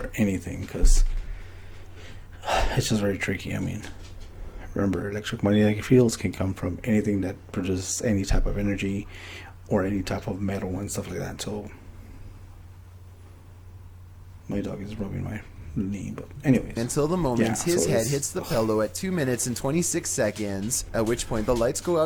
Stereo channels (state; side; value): identical; both; correlation 1.00